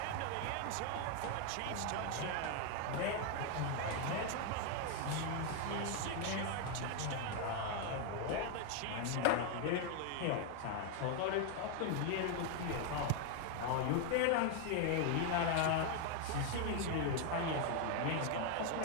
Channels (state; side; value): different; both; correlation 0.01